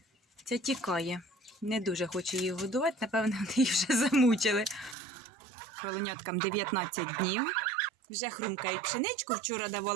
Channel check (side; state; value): left; drops out; at 5.0 s